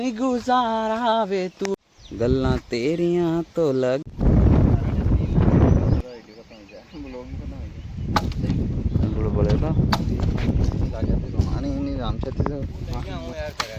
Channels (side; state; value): both; identical; correlation 1.00